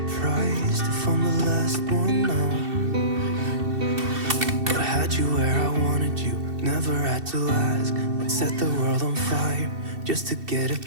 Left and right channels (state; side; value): late; left; 2.7 ms